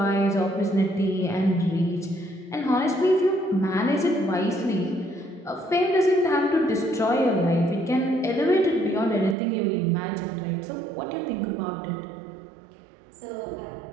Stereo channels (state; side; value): drops out; left; at 9.3 s